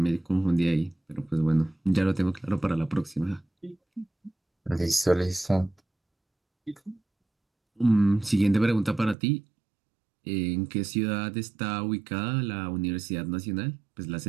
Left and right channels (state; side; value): drops out; left; at 9.2 s